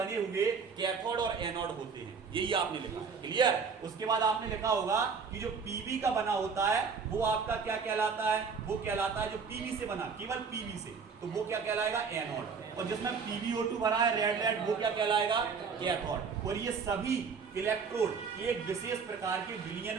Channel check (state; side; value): quieter; left; 5.6 dB